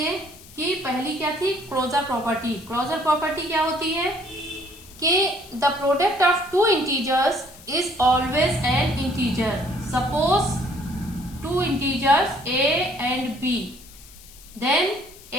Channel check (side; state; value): left; noise; hiss, 21 dB below the sound